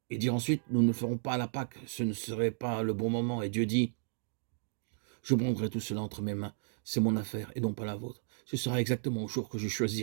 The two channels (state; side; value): silent; left; digital silence